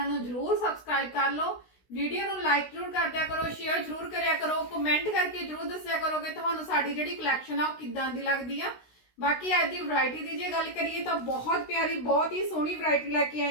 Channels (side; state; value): right; late; 16 ms